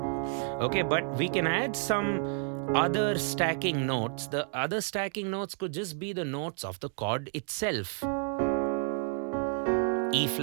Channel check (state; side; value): silent; left; 55 dB below the other